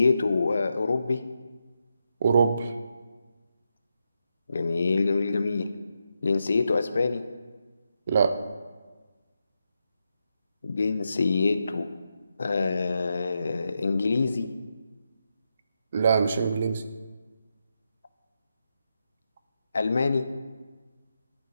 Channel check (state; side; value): inverted; both; correlation -0.85